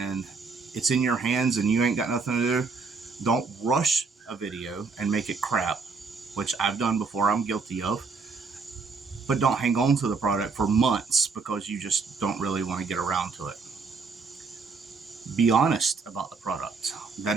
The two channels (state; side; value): quieter; left; 4.6 dB